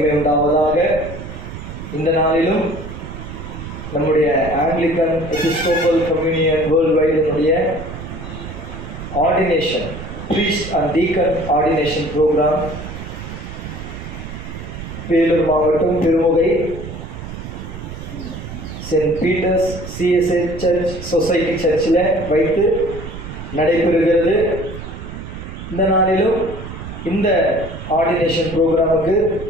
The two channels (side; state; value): right; noise; rumble, 10 dB below the sound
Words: உண்டாவதாக. இந்த நாளிலும் நம்முடைய ஆங்கிலிக்கன் எபிஸ்கோபல் கம்யூனியன் வேர்ல்ட் வைடினுடைய ordination priest and deacon ordination program Vellore மாவட்டம் Tirumugai Saint Peter's CSI church society சர்ச்சில் வைத்து நடைபெறுகிறது. இந்த நாளிலும் இந்த ஆர்டினேஷன் ப்ரோக்ராமுக்கு